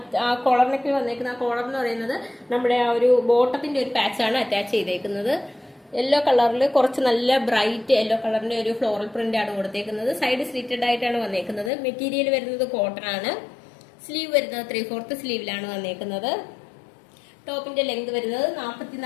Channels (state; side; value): drops out; right; at 11.7 s